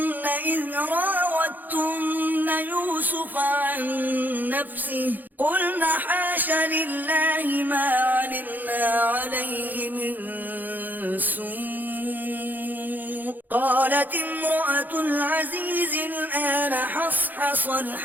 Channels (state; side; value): late; left; 0.085 ms